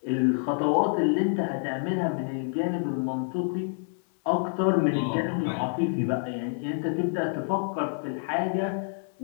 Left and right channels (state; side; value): silent; right; 60 dB below the other